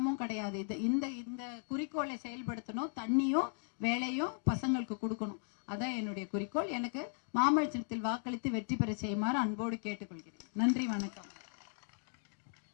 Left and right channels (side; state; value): right; silent; 53 dB below the other